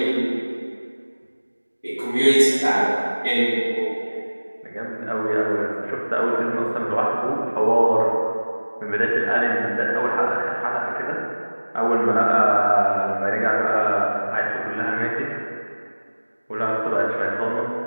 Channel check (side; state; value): both; inverted; correlation -1.00